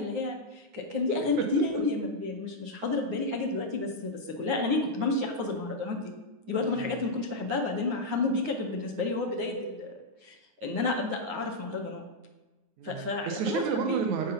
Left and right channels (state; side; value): late; left; 9.5 ms